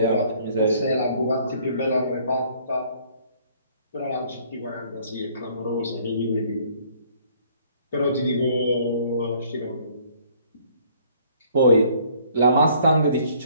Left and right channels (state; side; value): inverted; both; correlation -0.60